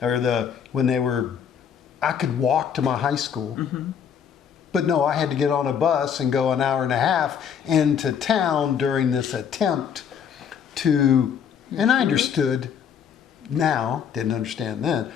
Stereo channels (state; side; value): quieter; right; 7.8 dB